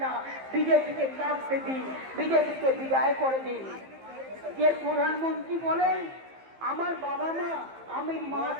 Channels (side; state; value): left; late; 15 ms